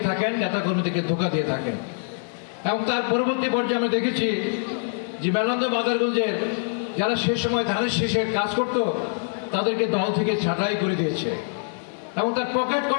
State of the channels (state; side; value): silent; right; digital silence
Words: থাকেন, নেতাকর্মীদেরকে ধোঁকা দিয়ে থাকেন। এবং তার পরবর্তী পর্যায়ে আমরা দেখেছি যে মেলান্দ মাদারগঞ্জের যারা সে সময় ধানের শীষে কাজ করত তাদেরকে দল থেকে ছাঁটাই করে দিয়েছে এবং তার পকেট